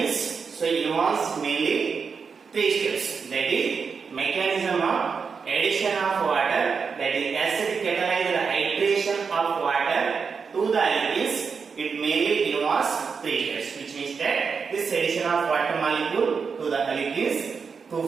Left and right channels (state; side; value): quieter; left; 5.6 dB